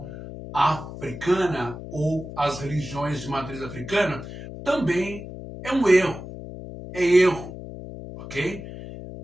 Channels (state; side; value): noise; left; hum, 11 dB below the sound